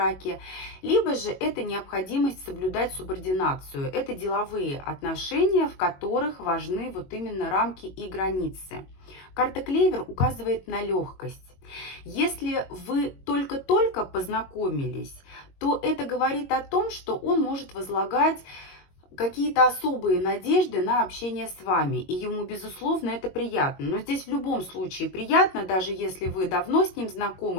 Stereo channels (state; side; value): late; right; 22 ms